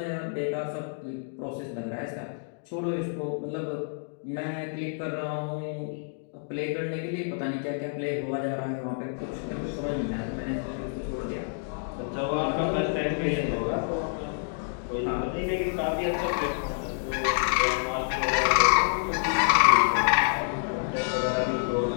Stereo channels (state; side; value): silent; right; digital silence